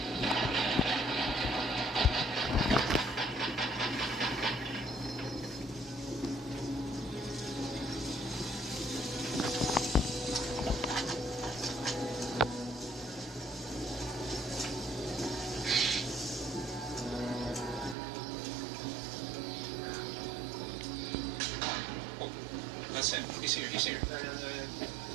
That's him. He's here.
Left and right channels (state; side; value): drops out; left; at 17.9 s